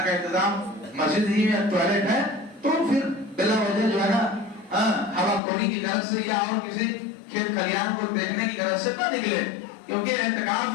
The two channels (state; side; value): drops out; right; at 5.4 s